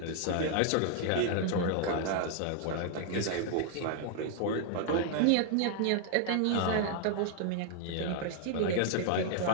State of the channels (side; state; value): both; different; correlation 0.00